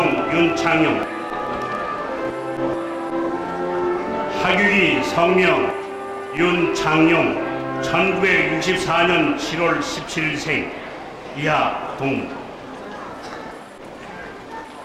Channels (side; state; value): both; identical; correlation 1.00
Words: 윤창용. 학위기 성명 윤창용 1964년 7월 17일생 이하 동.